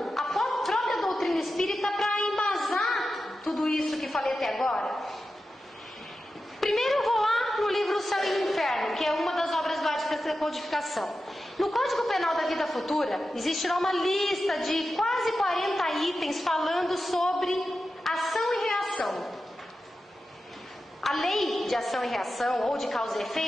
a própria doutrina espírita para embasar tudo isso que falei até agora. Primeiro eu vou lá no livro O Céu e o Inferno, que é uma das obras básicas da codificação. No Código Penal da Vida Futura, existirá uma lista de quase 40 itens falando sobre ação e reação. A lei de ação e reação, ou de causa e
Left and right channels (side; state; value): both; normal; correlation 0.92